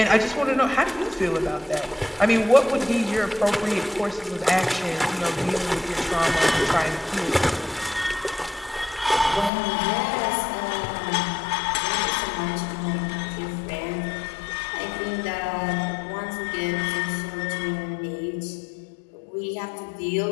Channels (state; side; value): drops out; right; at 9.5 s